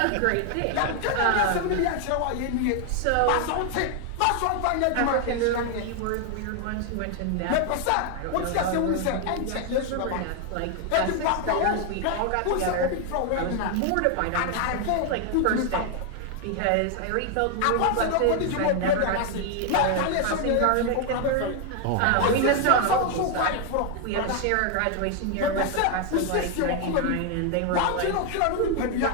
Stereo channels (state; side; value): different; both; correlation 0.00